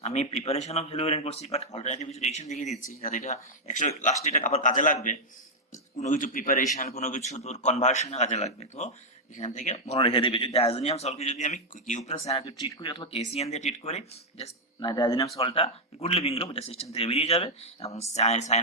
আমি প্রিপারেশন অফ হেলোয়ারিন করছি, বাট অল্টারনেটিভ কিছু রিঅ্যাকশন দেখিয়ে দিচ্ছি যাতে এটা লাস্টে এটা আবার কাজে লাগবে, কোনো কিছু প্রিপারেশন কোনো কিছু তোর কনভার্সনে কাজে লাগবে। তো এখান থেকে মনে রেখে দেবে। যদি ডায়াজোনিয়াম সল্টকে যদি আমি কিউ প্লাস সায়ানাইড ট্রিট করি অথবা কেসিএন দিয়ে ট্রিট করি, জাস্ট ডায়াজোনিয়াম সল্টটা গুড লিভিং গ্রুপ, এটা সিস্টেম থেকে বেরিয়ে যাবে এবং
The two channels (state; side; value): normal; both; correlation -0.02